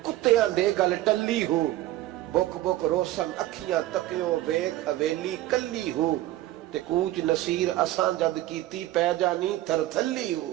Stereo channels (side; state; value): left; quieter; 15.5 dB